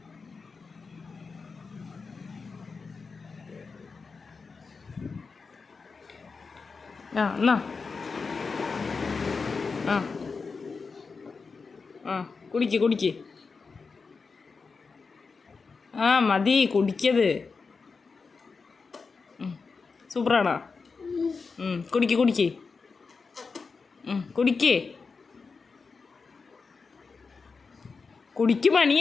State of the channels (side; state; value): right; quieter; 4.7 dB